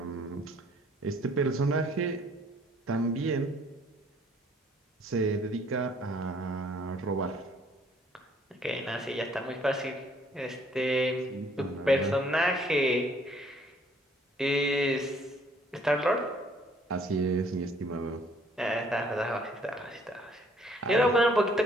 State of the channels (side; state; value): both; normal; correlation 0.61